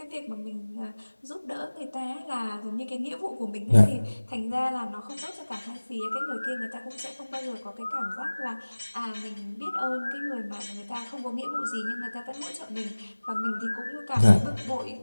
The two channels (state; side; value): inverted; both; correlation -1.00